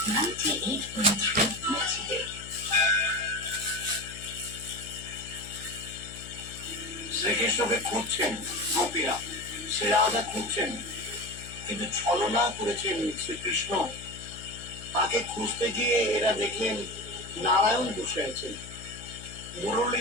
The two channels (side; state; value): left; noise; hum, 14 dB below the sound